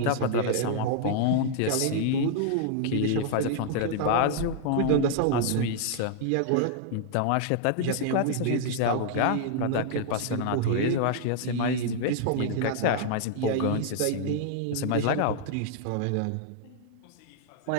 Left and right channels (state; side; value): different; both; correlation 0.00